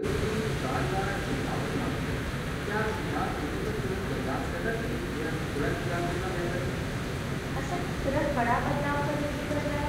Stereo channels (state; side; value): identical; both; correlation 1.00